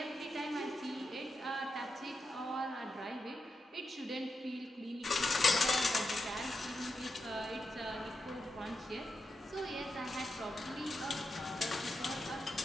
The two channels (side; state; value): both; normal; correlation 0.87